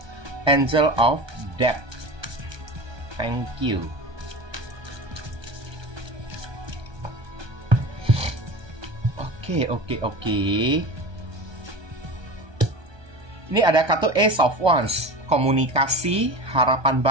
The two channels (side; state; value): left; late; 1.2 ms